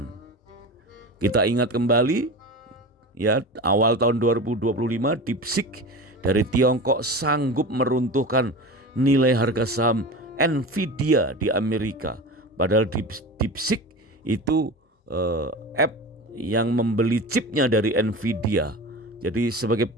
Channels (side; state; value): both; normal; correlation 0.30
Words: Kita ingat kembali, ya, awal tahun 2025 DeepSeek dari Tiongkok sanggup meruntuhkan nilai harga saham Nvidia di Amerika. Padahal DeepSeek itu app yang membeli chipnya dari Nvidia. Jadi sebagai